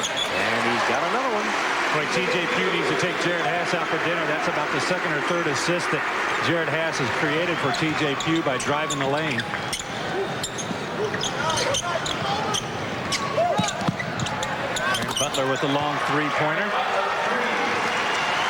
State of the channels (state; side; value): identical; both; correlation 1.00